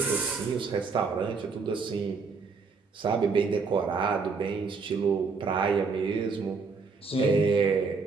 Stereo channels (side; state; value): left; quieter; 4.8 dB